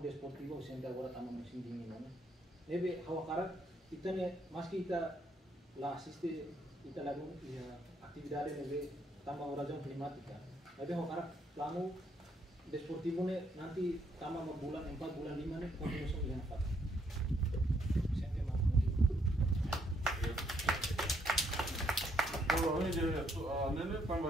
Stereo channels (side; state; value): both; normal; correlation 0.72